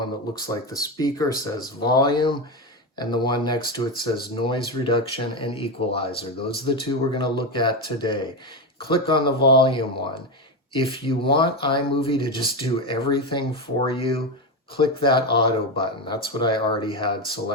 that looks like the speaker says volume, and the one next to it says noise reduction and equalizer. Those are the two we're going to look at today. Click on the volume one. If you want iMovie to just do everything for you, click that auto button. That's what I already had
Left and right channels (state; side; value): normal; both; correlation 0.13